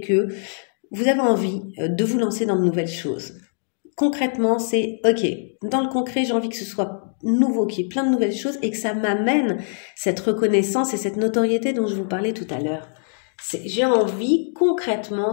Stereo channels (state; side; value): silent; right; digital silence